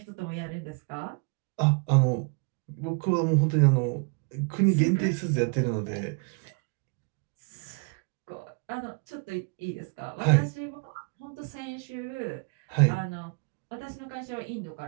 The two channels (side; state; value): left; quieter; 35.2 dB